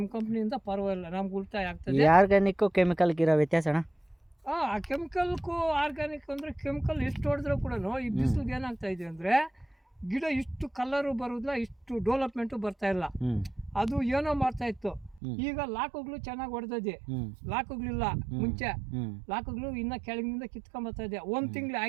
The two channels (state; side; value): drops out; left; at 15.2 s